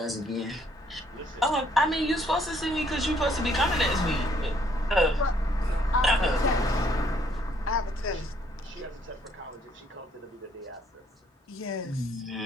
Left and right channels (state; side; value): normal; both; correlation 0.66